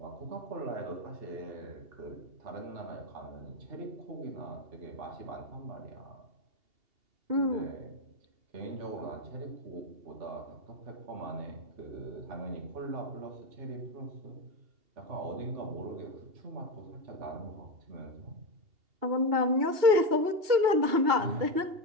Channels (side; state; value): left; late; 2.8 ms